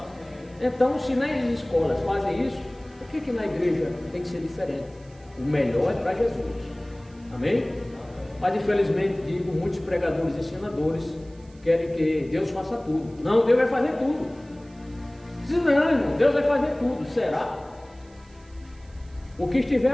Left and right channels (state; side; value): noise; right; hiss, 30 dB below the sound